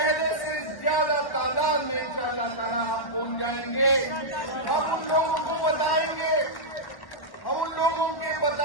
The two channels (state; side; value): late; right; 1.1 ms